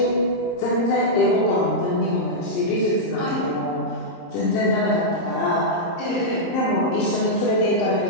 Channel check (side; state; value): right; late; 30 ms